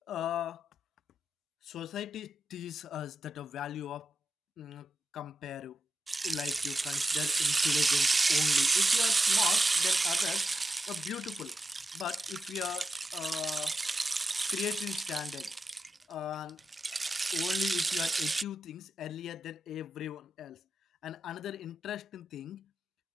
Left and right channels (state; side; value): normal; both; correlation 0.90